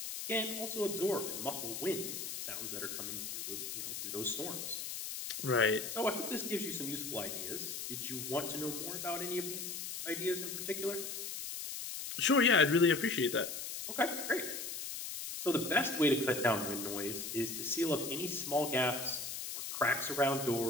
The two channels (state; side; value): noise; left; hiss, 6 dB below the sound